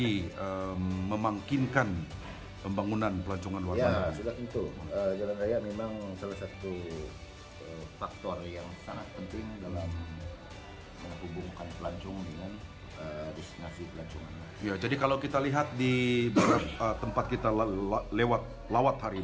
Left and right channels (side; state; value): both; identical; correlation 1.00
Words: memangkinkan pembangunan pelancongan luar bandar? Ya, sudah tentu. Jalan raya memang salah satu faktor yang sangat penting dalam menghubungkan pelancong dengan destinasi pelancongan. Ya, jadi kalau kita lihat di beberapa tempat kita lewat